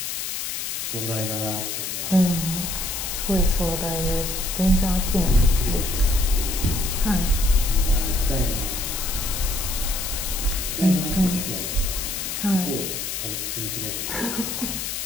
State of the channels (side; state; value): left; noise; hiss, 4 dB below the sound